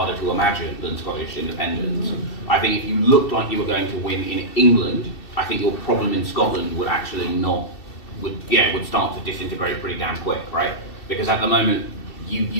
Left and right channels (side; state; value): right; late; 2.7 ms